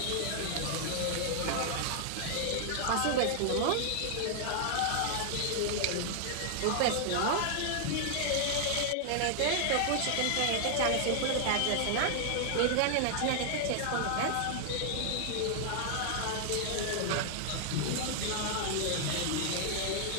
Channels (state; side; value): different; both; correlation 0.00